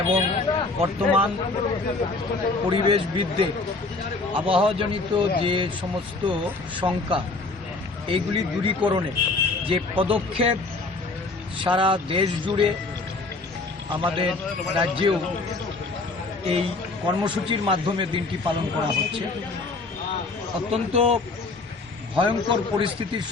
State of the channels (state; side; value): quieter; right; 3.5 dB